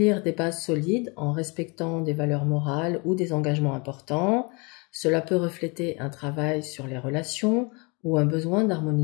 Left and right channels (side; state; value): right; quieter; 30.6 dB